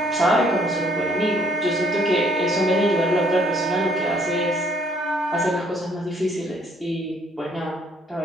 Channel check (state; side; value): normal; both; correlation 0.64